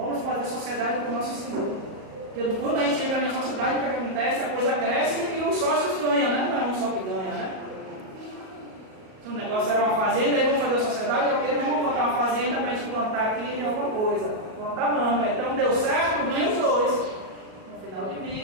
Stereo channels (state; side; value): late; left; 37 ms